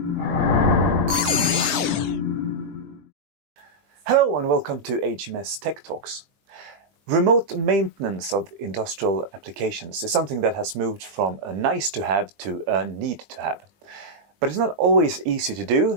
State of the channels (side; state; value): left; late; 20 ms